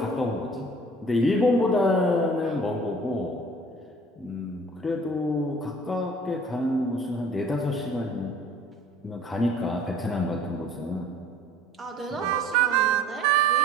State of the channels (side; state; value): both; normal; correlation 0.50